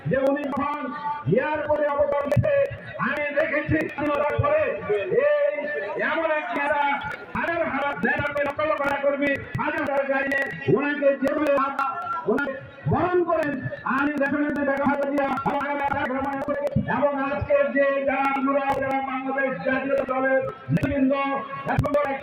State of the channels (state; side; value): identical; both; correlation 1.00